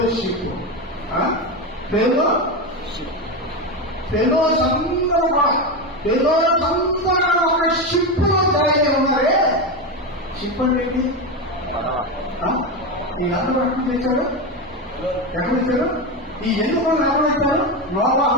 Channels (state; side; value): normal; both; correlation 0.15